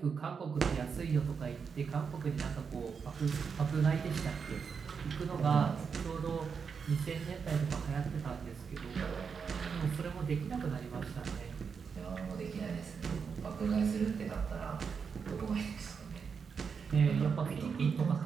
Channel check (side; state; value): left; quieter; 6.0 dB